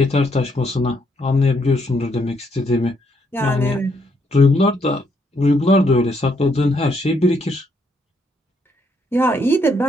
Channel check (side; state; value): both; normal; correlation 0.73